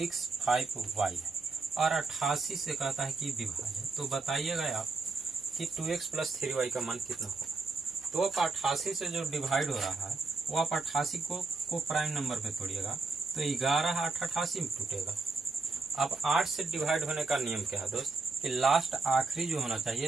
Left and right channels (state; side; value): quieter; left; 3.9 dB